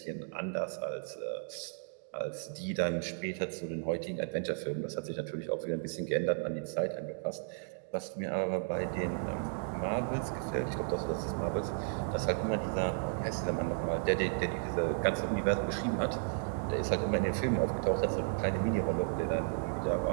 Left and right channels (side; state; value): left; silent; digital silence